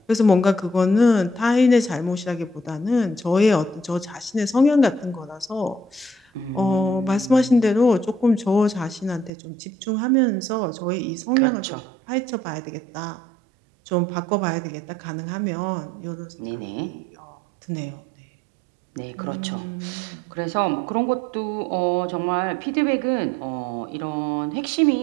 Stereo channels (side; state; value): left; drops out; at 9.3 s